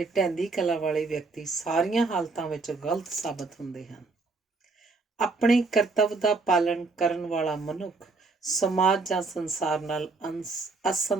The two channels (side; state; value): left; quieter; 3.9 dB